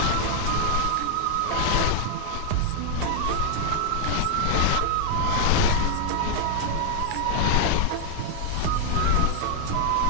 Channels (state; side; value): different; both; correlation 0.00